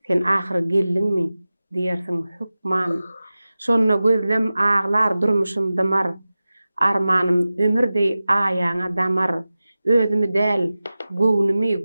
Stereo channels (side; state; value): both; inverted; correlation -0.96